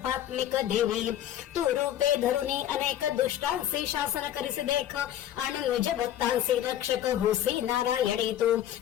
देवी। तू रूपे धरुनी अनेक दुष्टांसी शासन करिसी देख, अनुज भक्तांसी रक्षक होसी नारायणी तू।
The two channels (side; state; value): right; quieter; 11.6 dB